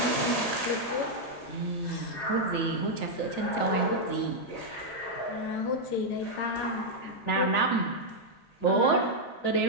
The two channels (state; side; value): late; right; 7.1 ms